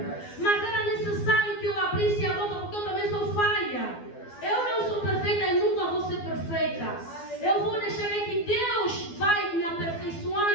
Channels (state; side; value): late; right; 12 ms